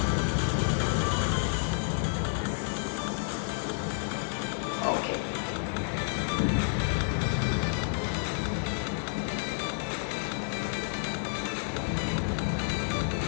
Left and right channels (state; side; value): silent; right; digital silence